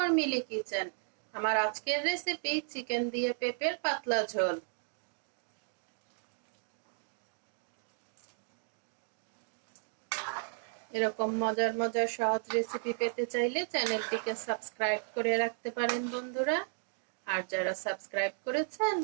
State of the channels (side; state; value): left; silent; digital silence